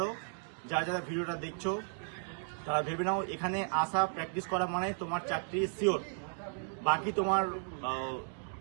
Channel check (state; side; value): silent; left; 55 dB below the other